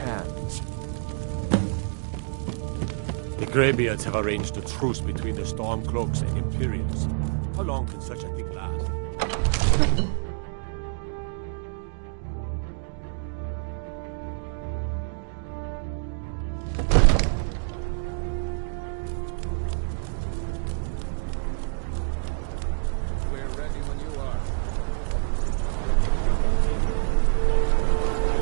The Greybeards have arranged a truce between the Stormcloaks and Imperials. How long can such a thing last?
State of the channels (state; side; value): silent; left; 58 dB below the other